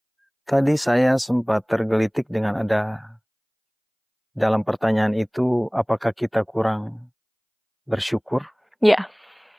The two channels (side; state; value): both; identical; correlation 1.00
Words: tadi saya sempat tergelitik dengan ada dalam pertanyaan itu, apakah kita kurang bersyukur? Ya.